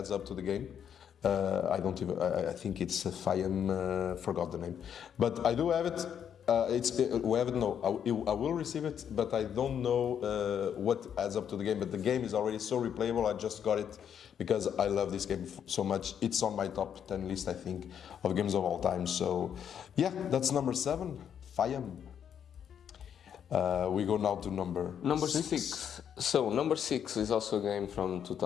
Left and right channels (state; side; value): quieter; right; 8.6 dB